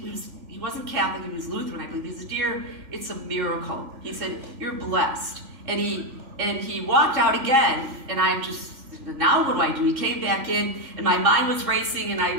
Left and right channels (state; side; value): late; left; 3.5 ms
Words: wasn't Catholic, he was Lutheran, I believe. He said, dear, it's a miracle. He said, you're blessed. And he walked out again, and I'm just, now what do? He came back in, and my mind was racing, and